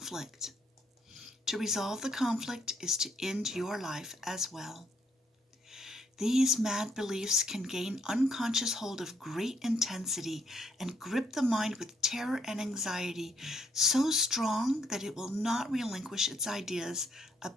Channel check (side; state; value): both; normal; correlation 0.70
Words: To resolve the conflict is to end your life as well. These mad beliefs can gain unconscious hold of great intensity and grip the mind with terror and anxiety so strong that it will not relinquish its ideas